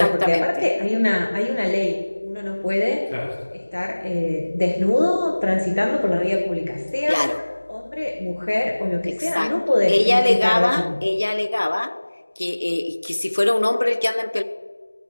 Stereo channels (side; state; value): both; inverted; correlation -1.00